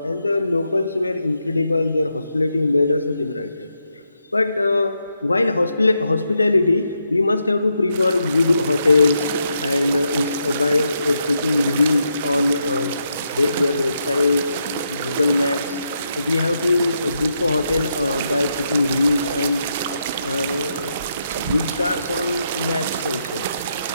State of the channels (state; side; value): inverted; both; correlation -0.82